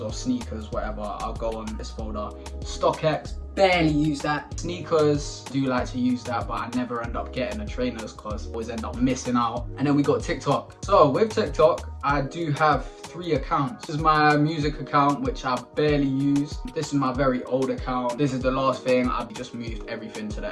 sneakers, whatever, I'll go on this folder. StockX, barely use that. Sneakers, do like to use that, but I never end up getting the trainers because I always end up missing out. And then we got TikTok. So with TikTok, I do have 3 accounts. This is my music account, which I barely use. This is my very old account. This is the last thing. I've just moved everything to the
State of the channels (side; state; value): both; identical; correlation 1.00